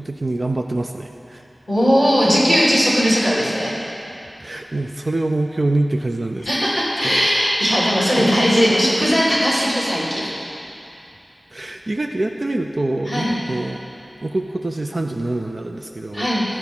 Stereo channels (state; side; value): normal; both; correlation 0.97